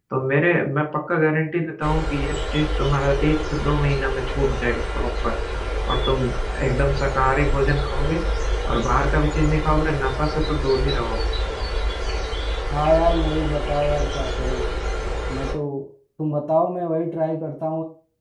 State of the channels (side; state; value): both; identical; correlation 1.00